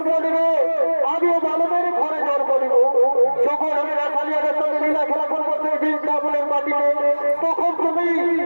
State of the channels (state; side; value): inverted; both; correlation -1.00